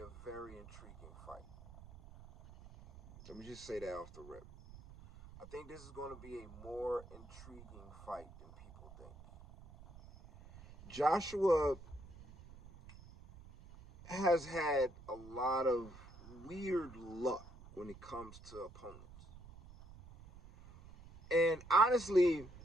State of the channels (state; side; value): noise; right; rumble, 18 dB below the sound